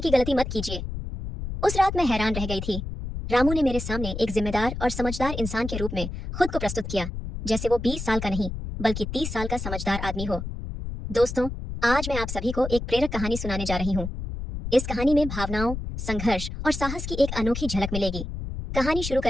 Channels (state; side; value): noise; left; rumble, 6 dB below the sound